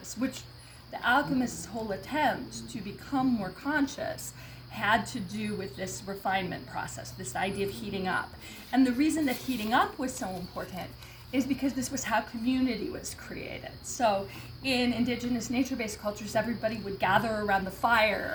which the alchemist's whole attempt to become more conscious had to do with this refinement process, this idea of heating up. And the reason that heating up was so important is because this was how community was created. So in indigenous nature-based cultures, everybody would gather around the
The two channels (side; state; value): both; identical; correlation 1.00